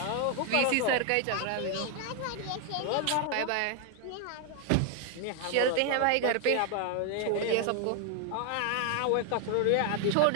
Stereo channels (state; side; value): different; both; correlation 0.00